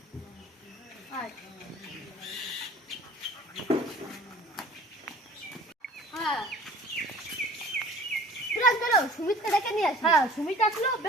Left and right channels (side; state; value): both; normal; correlation 0.46